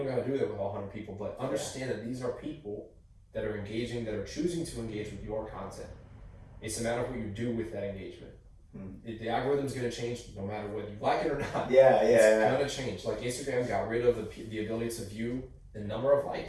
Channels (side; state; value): both; identical; correlation 1.00